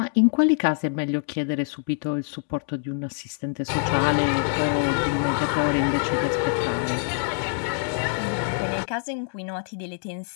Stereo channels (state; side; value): silent; right; 62 dB below the other